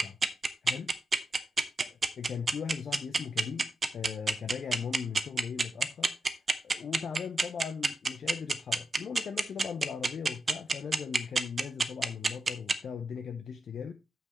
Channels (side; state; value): both; normal; correlation 0.88